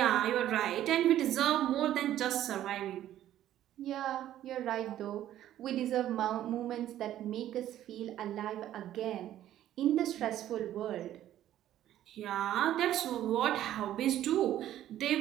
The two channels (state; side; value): quieter; left; 12.4 dB